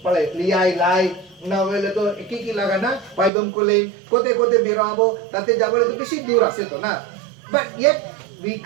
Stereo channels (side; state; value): left; drops out; at 3.3 s